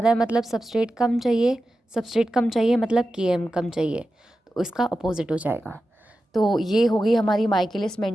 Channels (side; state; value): both; normal; correlation 0.92